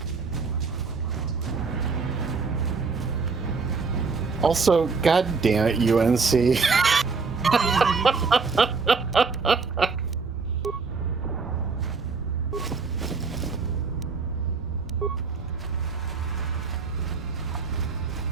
Also, god damn it, UNC.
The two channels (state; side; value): quieter; left; 4.8 dB